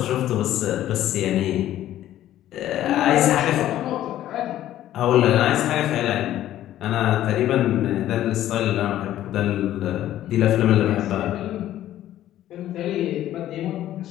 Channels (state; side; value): quieter; right; 12.9 dB